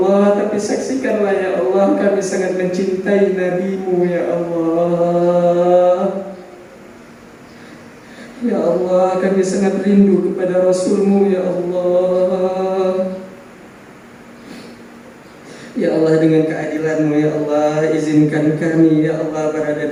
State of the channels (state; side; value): identical; both; correlation 1.00